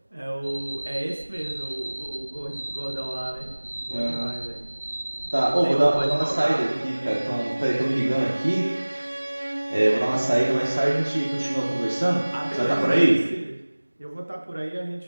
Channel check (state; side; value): inverted; both; correlation -1.00